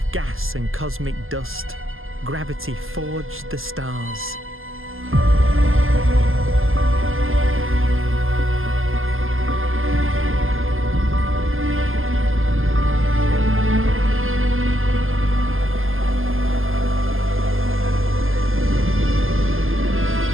gas and cosmic dust, gravity forged the stars.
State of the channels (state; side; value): late; left; 0.60 ms